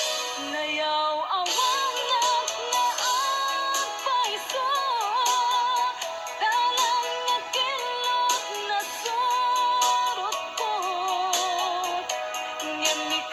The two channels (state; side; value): identical; both; correlation 1.00